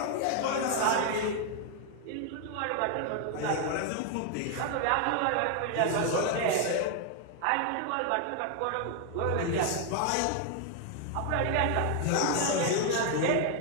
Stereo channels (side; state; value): both; different; correlation 0.00